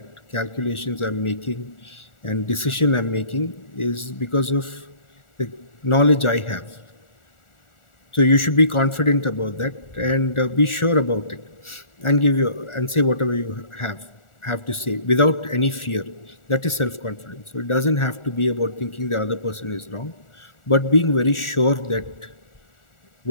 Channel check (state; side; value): late; right; 1.4 ms